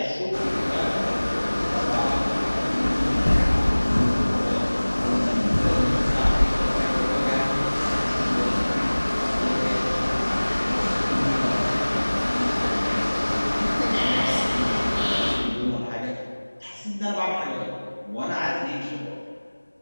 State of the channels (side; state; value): both; inverted; correlation -1.00